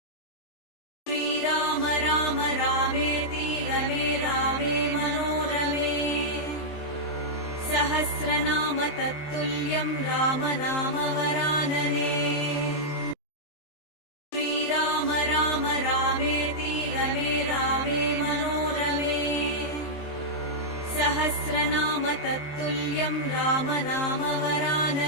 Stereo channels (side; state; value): right; late; 19 ms